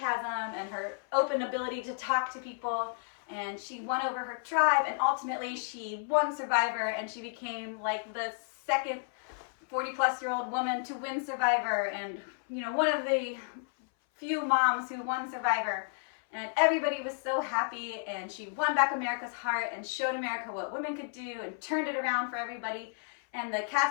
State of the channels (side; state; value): right; silent; 56 dB below the other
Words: and her open ability to talk to people. And she won over her tribe, and ultimately she won Survivor, and she became like the second 40-plus-year-old woman to win Survivor, and one of the few moms who won Survivor. And everybody was so happy, and she won back America's heart and showed America what women could do and turned it around for everybody. And the